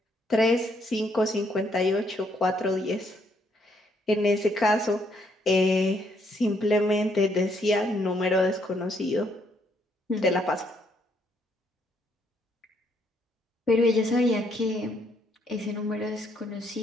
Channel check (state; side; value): normal; both; correlation 0.71